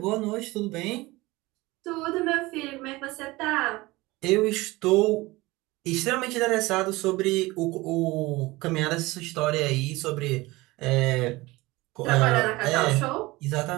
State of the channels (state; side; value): quieter; left; 20.9 dB